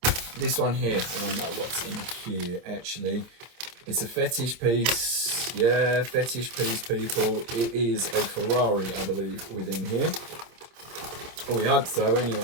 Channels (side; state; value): left; late; 27 ms